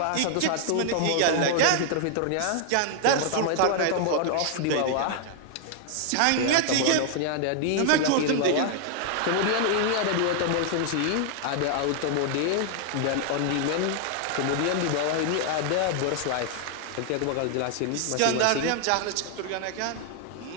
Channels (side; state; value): both; different; correlation 0.00